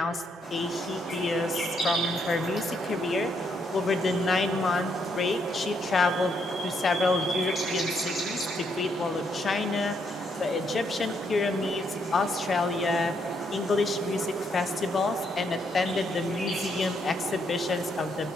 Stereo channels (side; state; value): both; normal; correlation 0.75